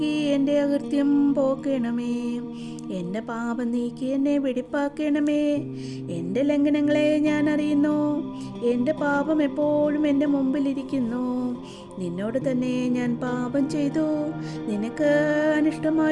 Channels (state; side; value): identical; both; correlation 1.00